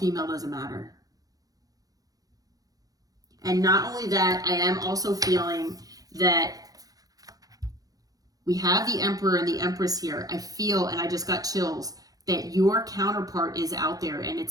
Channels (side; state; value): left; late; 0.18 ms